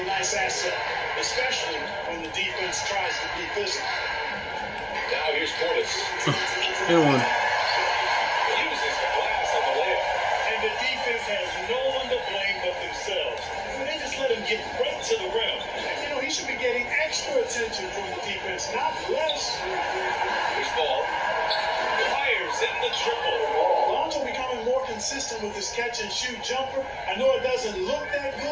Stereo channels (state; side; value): identical; both; correlation 1.00